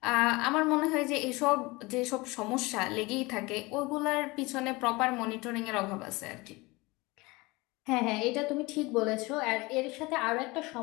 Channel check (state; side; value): quieter; right; 23.3 dB